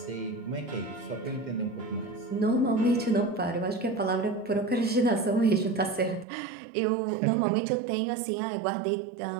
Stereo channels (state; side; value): drops out; left; at 6.2 s